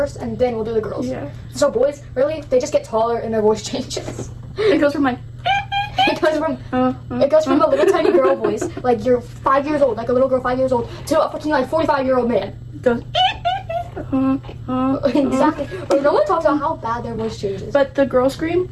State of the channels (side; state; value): both; identical; correlation 1.00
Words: and then we'll do the girls. Yeah. So boys, really, they just get taller and their voice changes. It goes from like. It goes from a little tiny girl voice, like you're 5 years old, like a little girl 5 years old, to a fucking like 45-year-old man. Goes. Exactly. But no one talks about how bad their voice changes. But the girl scream,